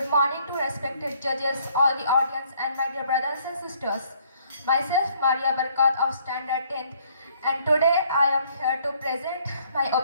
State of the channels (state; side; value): inverted; both; correlation -0.64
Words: morning to respected judges, all the audience and my dear brothers and sisters. Myself Maria Barkat of Standard 10th, and today I am here to present my